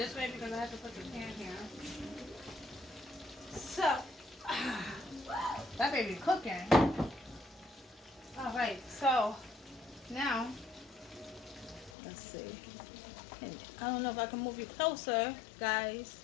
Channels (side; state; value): right; drops out; at 12.0 s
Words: way because I have to put the pan here. So, that baby cooking. Alright, so now, let's see. I don't know if I can move you closer, guys.